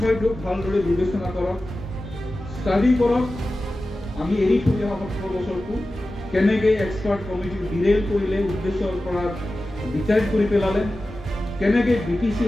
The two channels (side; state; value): both; normal; correlation 0.94